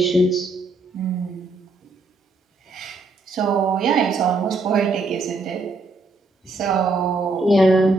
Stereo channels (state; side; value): quieter; left; 3.3 dB